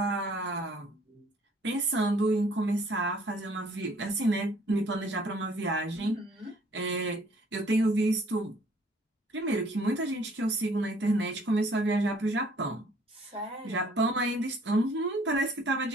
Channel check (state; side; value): normal; both; correlation 0.59